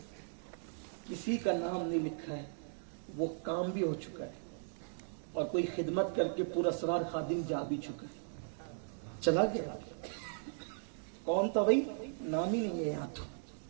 کسی کا نام نہیں لکھا ہے، وہ کام بھی ہو چکا ہے اور کوئی خدمت کر کے پورا اسرار خادم جا بھی چکا ہے، چلا گیا۔ کون تھا بھائی؟ نام ہی نہیں ہے یہاں تو،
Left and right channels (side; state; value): left; silent; digital silence